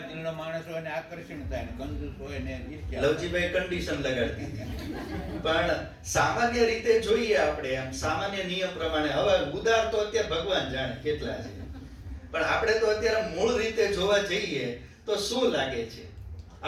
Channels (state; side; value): identical; both; correlation 1.00